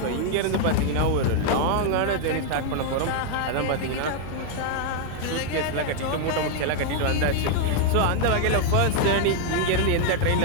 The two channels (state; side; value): different; both; correlation 0.00